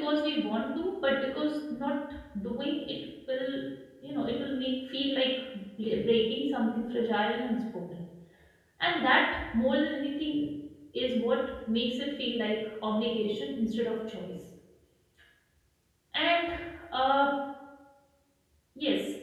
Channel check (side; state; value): both; identical; correlation 1.00